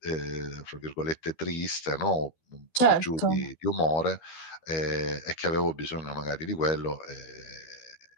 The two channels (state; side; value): late; right; 13 ms